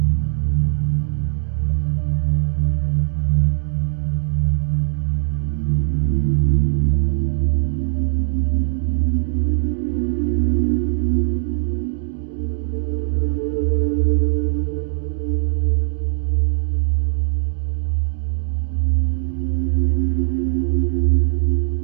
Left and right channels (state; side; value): silent; left; digital silence